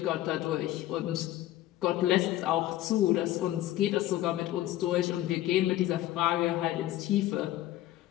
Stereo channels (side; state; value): right; quieter; 14.6 dB